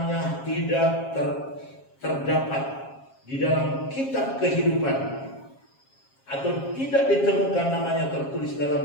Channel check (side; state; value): right; late; 7.4 ms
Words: tidak terdapat di dalam kitab kehidupan, atau tidak ditemukan namanya tertulis